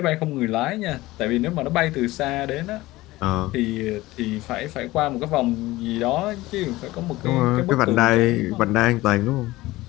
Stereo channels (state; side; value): quieter; right; 18.6 dB